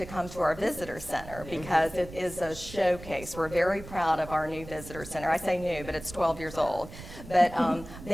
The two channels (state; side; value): noise; right; rumble, 14 dB below the sound